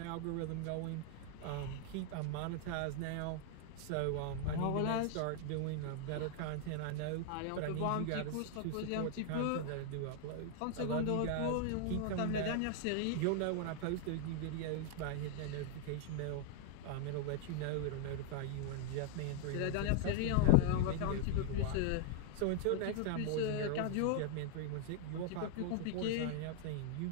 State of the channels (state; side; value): different; both; correlation 0.00